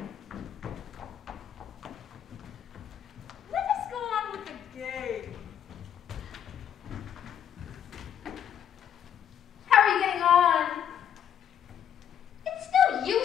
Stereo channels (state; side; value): quieter; right; 9.5 dB